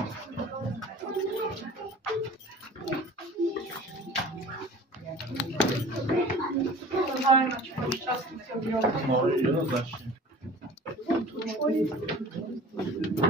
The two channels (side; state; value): both; normal; correlation 0.43